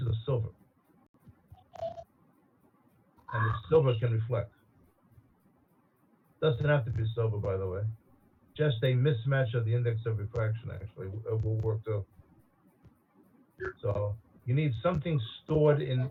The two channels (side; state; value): both; identical; correlation 1.00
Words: of silver, and the silver can reflect. Doesn't have to be silver, by the way. Just a mismatch of the index of refraction actually will work too. So you need something stored in